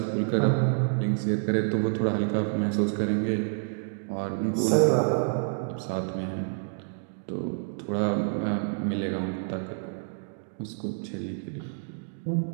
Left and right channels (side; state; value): left; silent; digital silence